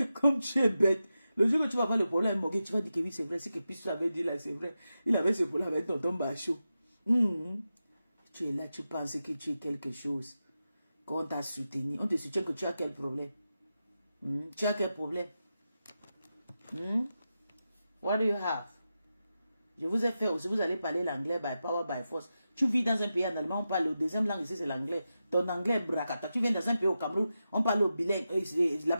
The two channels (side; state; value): both; inverted; correlation -0.90